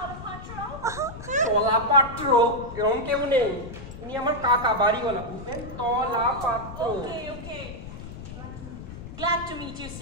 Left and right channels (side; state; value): left; noise; rumble, 12 dB below the sound